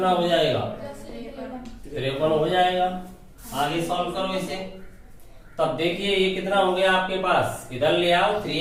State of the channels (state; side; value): identical; both; correlation 1.00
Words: हो जाएगा? 53 हो जाएगा। आगे सॉल्व करो इसे, तब देखिए ये कितना हो गया आपके पास, इधर ले आओ